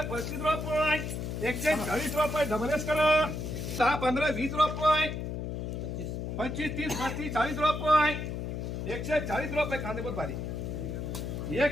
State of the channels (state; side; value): noise; left; hum, 4 dB below the sound